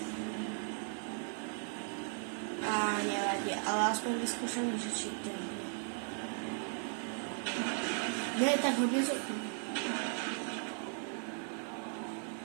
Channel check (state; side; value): silent; left; 53 dB below the other